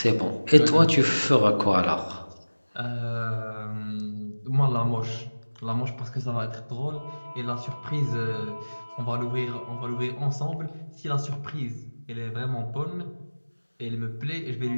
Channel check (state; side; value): inverted; both; correlation -1.00